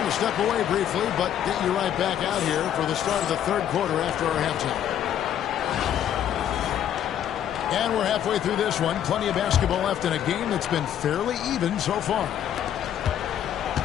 to step away briefly, but get you right back out here for the start of the third quarter after our halftime. And we're halfway through this one. Plenty of basketball left in a game that's been fairly even so far.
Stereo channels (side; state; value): right; quieter; 10.2 dB